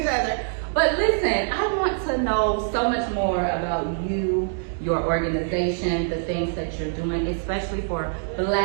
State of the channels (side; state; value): left; silent; 62 dB below the other